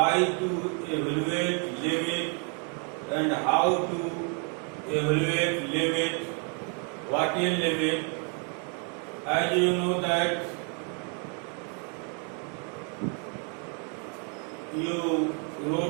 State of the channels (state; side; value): quieter; left; 39.1 dB